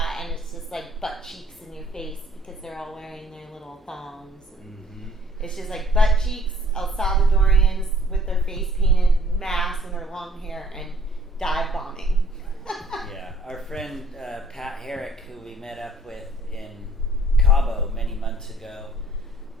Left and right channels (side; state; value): both; normal; correlation 0.57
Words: and it's just like butt cheeks in your face because they're all wearing their little thongs. It's just like butt cheeks, El Salvadorians with their face painted masks and their long hair, and dive bombing. Yeah, our friend Pat Herrick, who we met up with in Cabo many months ago,